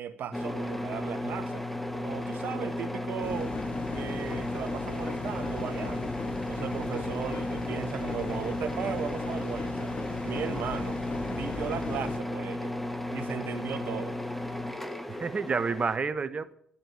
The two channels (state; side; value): normal; both; correlation 0.79